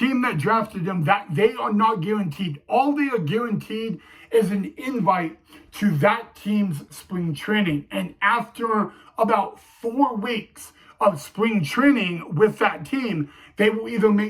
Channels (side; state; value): both; identical; correlation 1.00